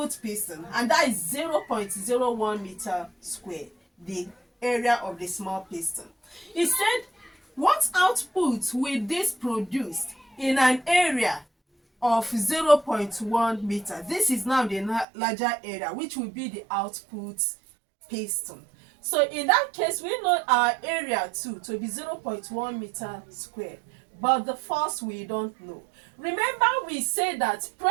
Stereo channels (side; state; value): left; drops out; at 15.1 s